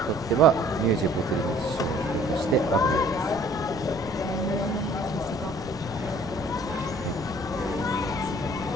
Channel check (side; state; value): right; noise; rumble, 17 dB below the sound